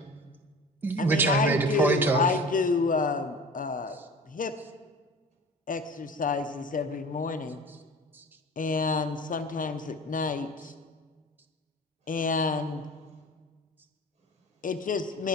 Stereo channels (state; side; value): normal; both; correlation 0.39